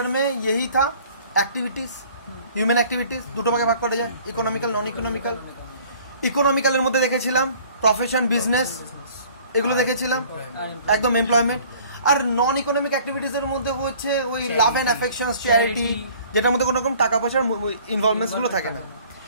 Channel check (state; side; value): inverted; both; correlation -0.52